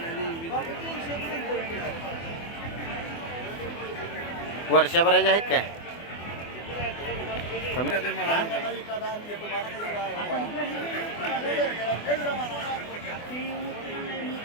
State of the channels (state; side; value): late; right; 24 ms